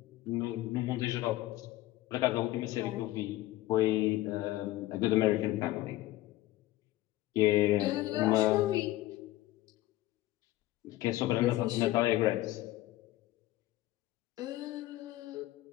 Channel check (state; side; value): quieter; right; 16.4 dB